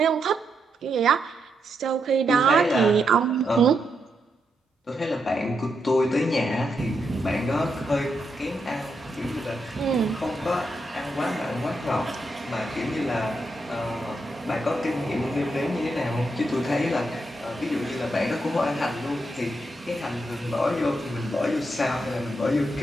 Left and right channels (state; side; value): normal; both; correlation 0.82